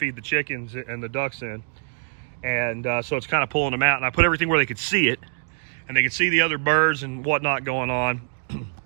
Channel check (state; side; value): silent; left; digital silence